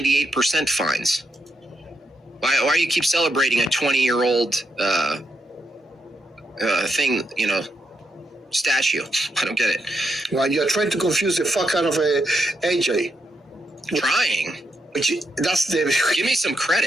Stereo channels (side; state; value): both; normal; correlation 0.81